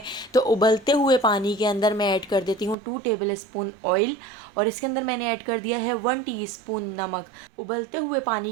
तो उबलते हुए पानी के अंदर मैं ऐड कर देती हूँ 2 टेबल स्पून ऑयल, और इसके अंदर मैंने ऐड कर दिया है 1 टीस्पून नमक। उबलते हुए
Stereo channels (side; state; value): left; drops out; at 2.8 s